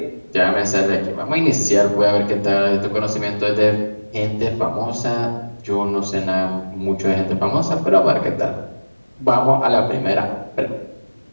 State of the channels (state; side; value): inverted; both; correlation -1.00